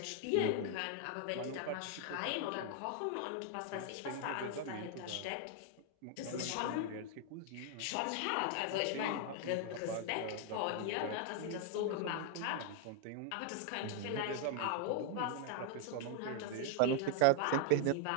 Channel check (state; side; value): different; both; correlation 0.00